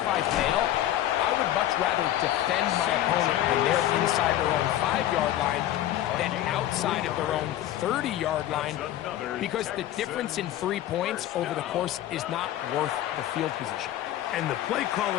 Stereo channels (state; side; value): quieter; right; 13.0 dB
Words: I fail, I would much rather defend my opponent when they're inside their own 5-yard line than outside of their own 30-yard line, because the difference in 3 points over the course is not worth the field position. And the play